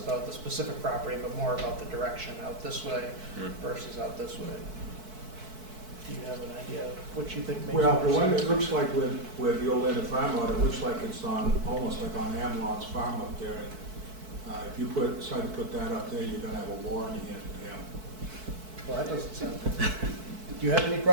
the specific property, but more about the direction, out this way Hmm. versus out this way. Do you have an idea of what you think makes more Well, sense? the one it looks like with the old Atlantic Farm Road, it looks like it's almost like on Amlon's farm up there. And if you decide to put that up there, you're gonna have a war on your hands with him. Well, that doesn't sound good. Do you have any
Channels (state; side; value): late; left; 4.6 ms